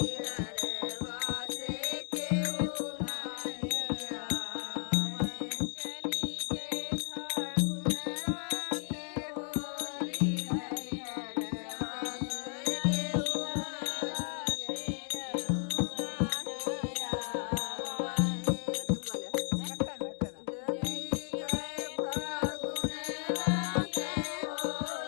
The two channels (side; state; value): right; silent; 55 dB below the other